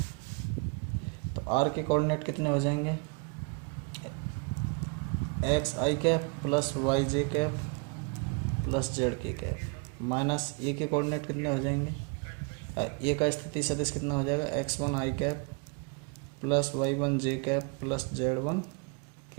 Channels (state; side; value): quieter; left; 34.2 dB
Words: तो आर के कोऑर्डिनेट कितने हो जाएंगे? एक्स आई कैप प्लस वाई जे कैप प्लस जेड के कैप माइनस ए के कोऑर्डिनेट कितने हो जाएंगे? ए का स्थिति सदिश कितना हो जाएगा? एक्स वन आई कैप प्लस वाई वन जे कैप प्लस जेड वन